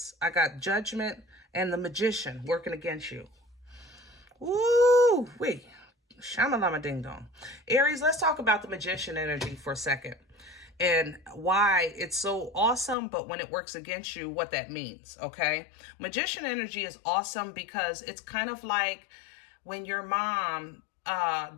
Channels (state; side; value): drops out; right; at 13.0 s